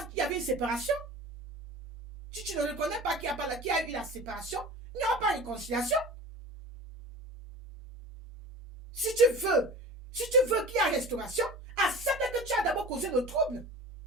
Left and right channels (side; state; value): both; normal; correlation 0.37